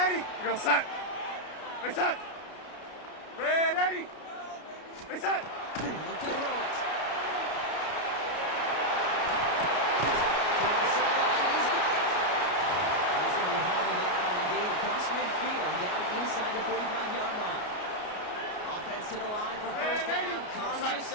80. We go set. We set. Red 80. We set. They look to throw it. Across midfield, down inside the 45-yard line. Offense to the line for 1st down, conscious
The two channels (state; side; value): late; right; 33 ms